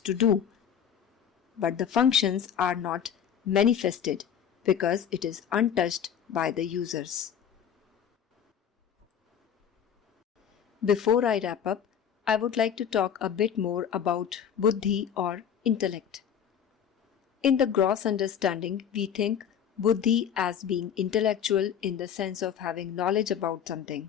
to do, but the functions are not manifested because it is untouched by the users. Before I wrap up, I would like to talk a bit more about Buddhi or intellect. In the gross understanding, we think Buddhi as being intellectual in the sense of having knowledge about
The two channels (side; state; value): right; quieter; 8.4 dB